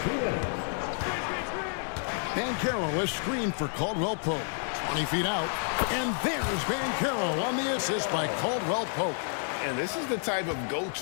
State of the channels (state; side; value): silent; right; 58 dB below the other